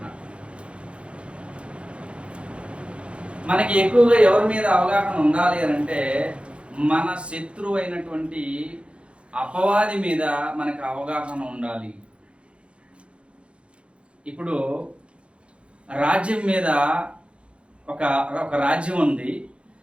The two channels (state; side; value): late; left; 0.059 ms